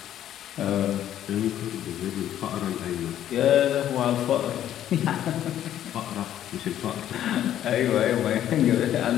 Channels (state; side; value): quieter; right; 11.4 dB